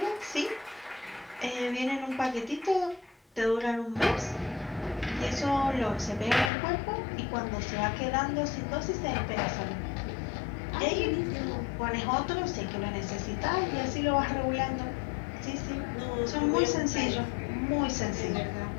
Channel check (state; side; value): drops out; right; at 6.5 s